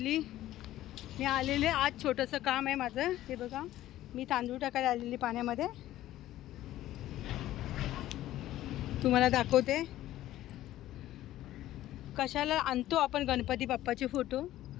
मी आलेले आज छोटंसं काम आहे माझं. हे बघा, मी तांदूळ टाकायला आलेली पाण्यामध्ये. तुम्हाला दाखवते कशाला आणतो आपण गणपती बाप्पाचे फोटो.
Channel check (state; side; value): quieter; right; 14.3 dB